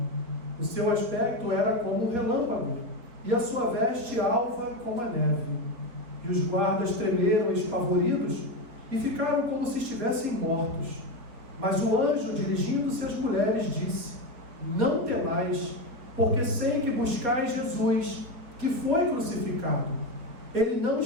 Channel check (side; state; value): left; late; 4.5 ms